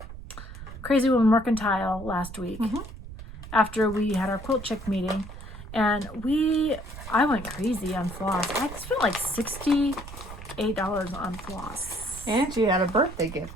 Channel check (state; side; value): noise; right; rumble, 13 dB below the sound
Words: Crazy Woman Mercantile last week after we had our quilt chick meeting. And I went crazy on floss. I spent like $68 on floss. And she had a birthday gift.